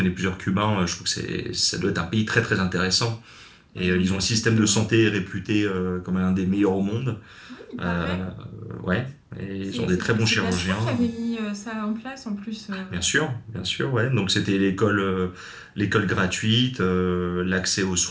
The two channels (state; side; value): identical; both; correlation 1.00